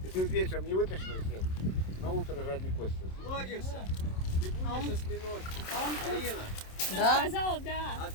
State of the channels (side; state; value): right; late; 27 ms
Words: Если вечером не вытащил всех, на утро жадный кость. логишься? Ты будешь осьминожки. Марина, Да. Сказала, да. а